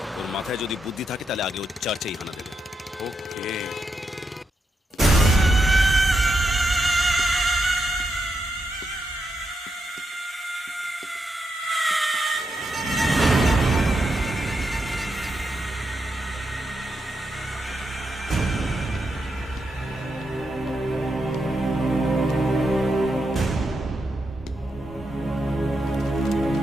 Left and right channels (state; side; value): normal; both; correlation 0.84